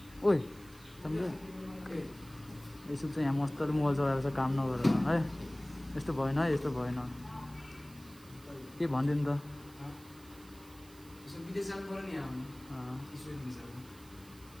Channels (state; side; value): noise; right; hiss, 23 dB below the sound